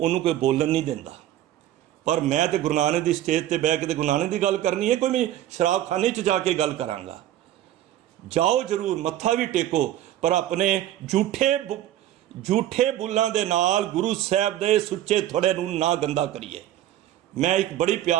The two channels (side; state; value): left; quieter; 12.7 dB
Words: कोई बोलन नहीं देता। पर मैं तो गुरु नानक की स्टेज पर बह के गुरु नानक की गल करनी है, कोई मैं शराबखाने च जाके गल करांगा। जाओ जरूर, मत्था भी टेको, पर अपने झूठे बुल्लां दे नाल गुरु साहब दे सुच्चे थोड़े नूं ना गंदा करिए। मैं एक बड़ी